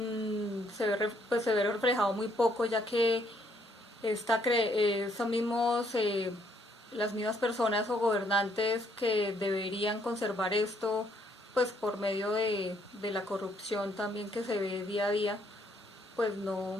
se ve reflejado muy poco, ya que las mismas personas o gobernantes que deberían conservar esto, por medio de la corrupción también que se ve día a día, no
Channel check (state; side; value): normal; both; correlation 0.69